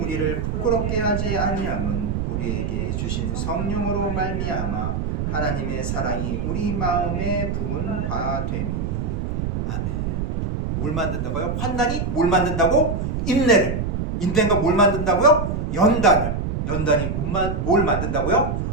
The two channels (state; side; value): noise; right; rumble, 1 dB below the sound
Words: 부끄럽게 하지 아니함은 우리에게 주신 성령으로 말미암아 하나님의 사랑이 우리 마음에 부은 바 됨이니. 아멘. 뭘 만든다고요? 환난이 뭘 만든다고? 인내를. 인내가 뭘 만든다고요? 연단을. 연단이 뭘 만든다고요?